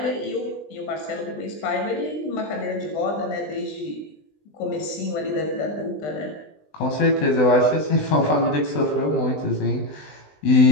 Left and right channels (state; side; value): late; right; 20 ms